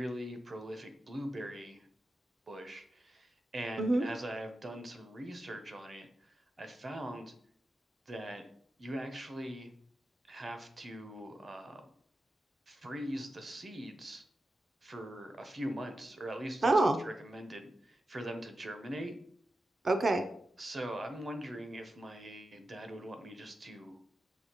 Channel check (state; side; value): normal; both; correlation 0.91